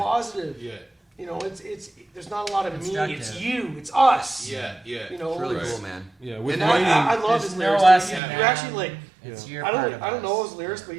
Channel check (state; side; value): drops out; left; at 8.2 s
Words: positive. Yeah. You know, it's there's not a lot of me. It's Constructive. you. It's us. Yeah. Yeah. You know, It's really it's- cool, man. Yeah, with and writing. I love There's his no lyrics. us dude. and You actually them. like. It's Yeah. your I part don't of know us. his lyrics, Yeah. but